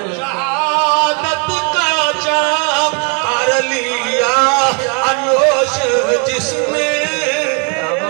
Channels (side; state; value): left; quieter; 37.3 dB